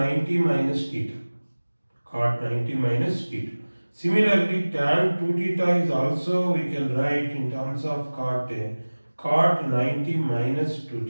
minus theta. Similarly, tan 2 theta is also we can write in terms of cot 90 minus 2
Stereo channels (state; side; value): inverted; both; correlation -1.00